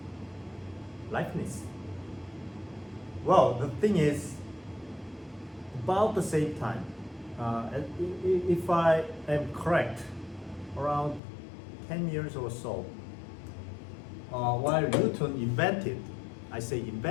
Leibniz. Well, the thing is, about the same time, if I am correct, around 10 years or so, while Newton invented, I say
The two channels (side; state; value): right; drops out; at 11.2 s